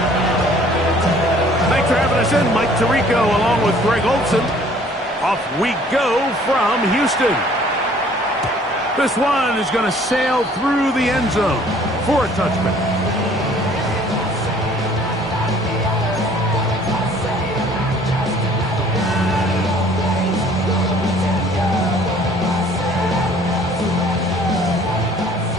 Mike Tirico along with Greg Olson. Off we go from Houston. This one is going to sail through the end zone for a touchback.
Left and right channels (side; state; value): both; normal; correlation 0.55